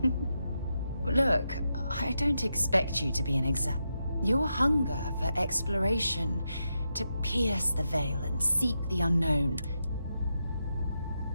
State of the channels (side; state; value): both; inverted; correlation -0.86